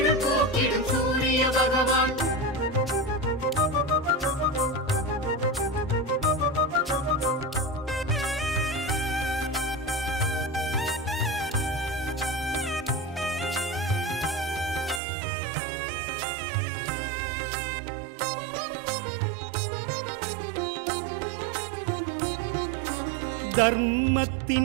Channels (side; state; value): left; drops out; at 15.0 s